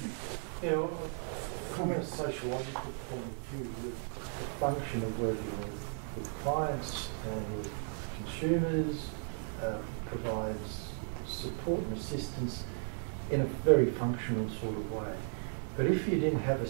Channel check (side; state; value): left; silent; 54 dB below the other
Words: From a sociological point of view, the function of working with clients and with consumers provides support and assistance in a very functional sort of way. But if you didn't have a